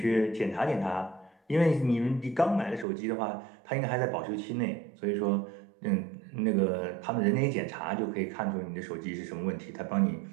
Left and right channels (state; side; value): drops out; left; at 2.9 s